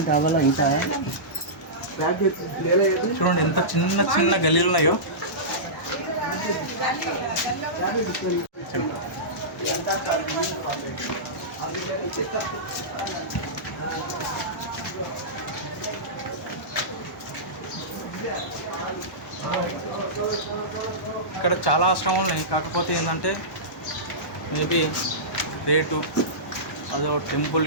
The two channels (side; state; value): both; normal; correlation -0.18